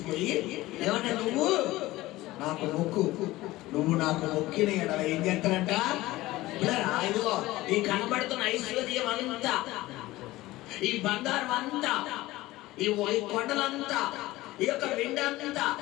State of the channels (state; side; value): quieter; right; 18.0 dB